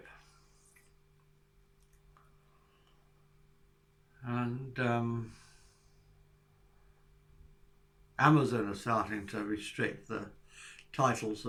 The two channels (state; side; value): identical; both; correlation 1.00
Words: And Amazon are starting to restrict the titles